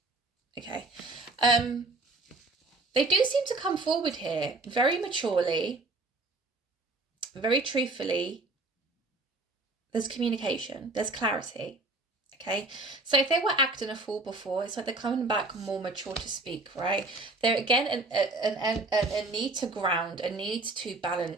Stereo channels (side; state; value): left; quieter; 3.2 dB